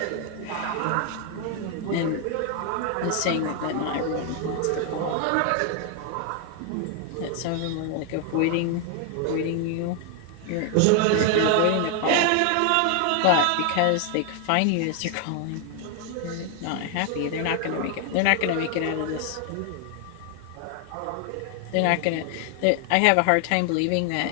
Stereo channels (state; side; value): different; both; correlation 0.00